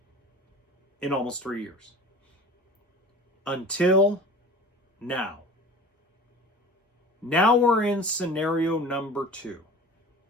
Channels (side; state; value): both; normal; correlation 0.39